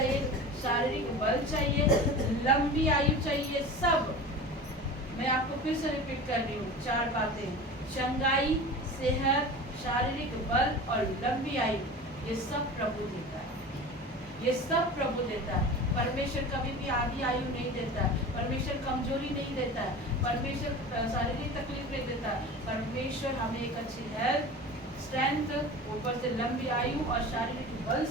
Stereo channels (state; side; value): normal; both; correlation 0.34